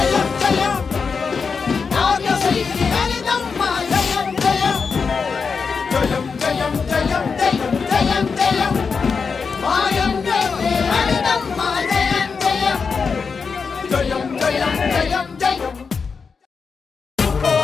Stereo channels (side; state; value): right; quieter; 5.3 dB